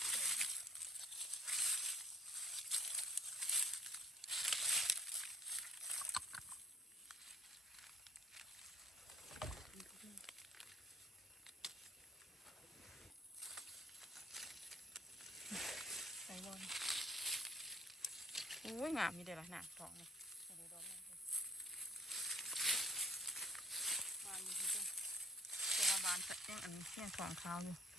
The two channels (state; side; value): normal; both; correlation 0.60